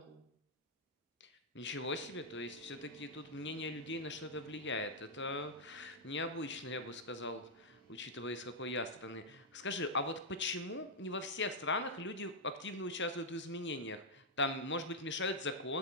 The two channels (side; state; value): both; normal; correlation -0.04